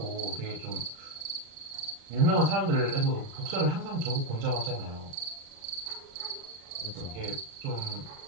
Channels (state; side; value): late; left; 35 ms